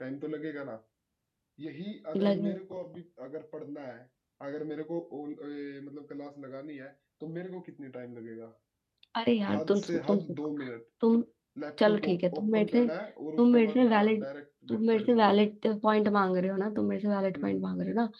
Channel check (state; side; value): identical; both; correlation 1.00